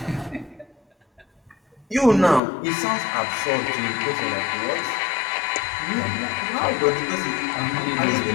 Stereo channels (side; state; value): right; drops out; at 2.4 s